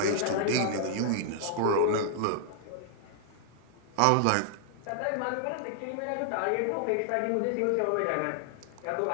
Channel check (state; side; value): different; both; correlation 0.00